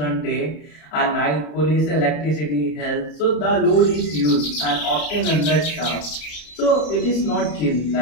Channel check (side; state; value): right; late; 34 ms